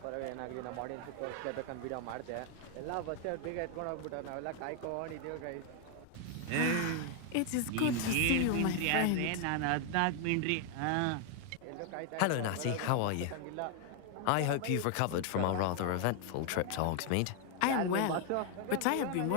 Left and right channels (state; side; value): different; both; correlation 0.01